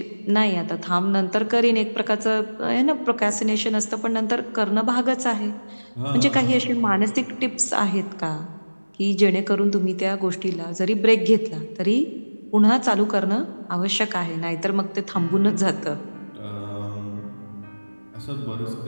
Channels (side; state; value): both; inverted; correlation -1.00